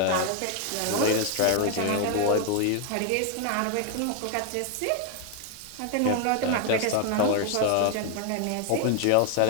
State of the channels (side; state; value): both; different; correlation 0.01